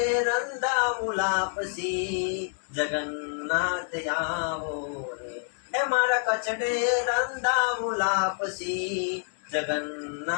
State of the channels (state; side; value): silent; right; 56 dB below the other